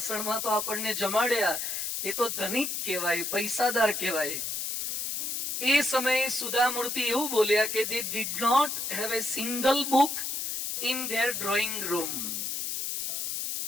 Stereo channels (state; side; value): noise; left; hiss, 3 dB below the sound